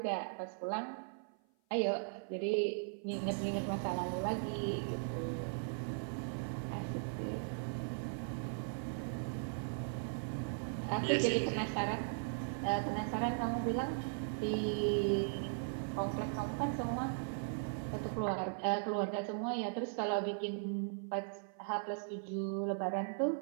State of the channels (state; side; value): silent; left; 52 dB below the other